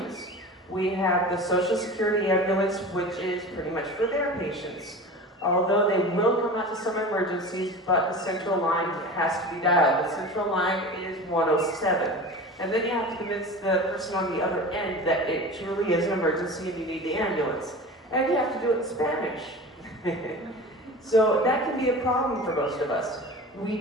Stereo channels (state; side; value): normal; both; correlation 0.34